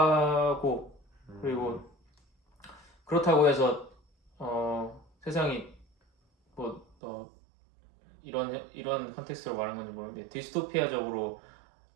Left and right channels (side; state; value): left; drops out; at 6.9 s